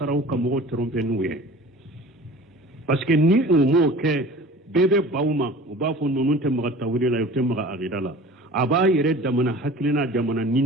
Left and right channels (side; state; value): both; normal; correlation 0.42